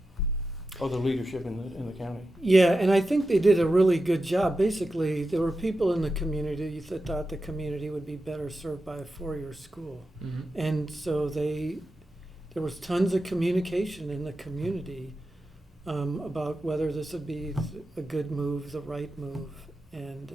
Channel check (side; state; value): both; normal; correlation 0.91